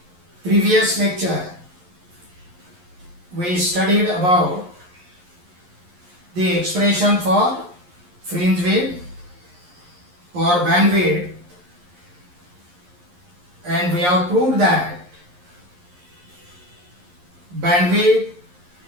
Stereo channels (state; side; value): late; left; 11 ms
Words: Previous lecture we studied about the expression for fringe width or bandwidth, and we have proved that bandwidth